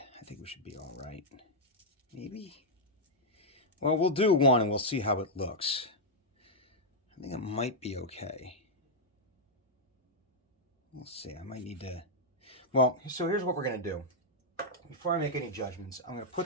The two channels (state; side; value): normal; both; correlation -0.04